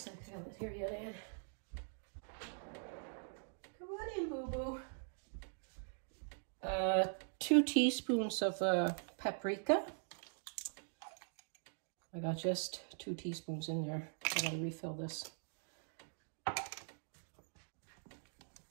I got it here yet, Ann. Come on in, boo-boo. 2 teaspoons of paprika. I got just 2 teaspoons in there. I gotta refill this.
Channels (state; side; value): silent; left; digital silence